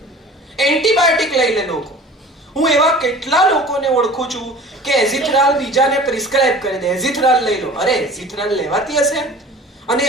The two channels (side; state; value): both; normal; correlation 0.43